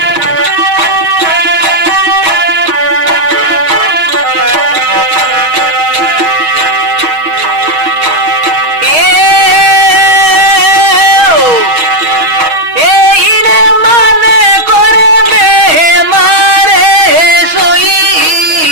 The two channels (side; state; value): left; late; 6.3 ms